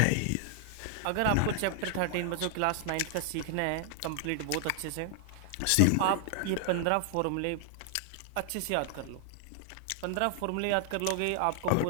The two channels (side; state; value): both; different; correlation 0.00